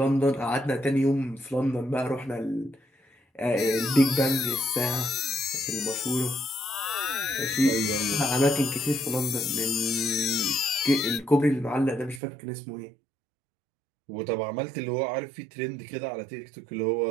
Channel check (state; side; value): drops out; left; at 12.2 s